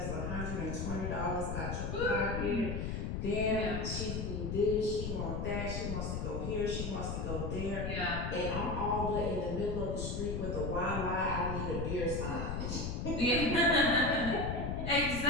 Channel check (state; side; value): noise; left; rumble, 3 dB below the sound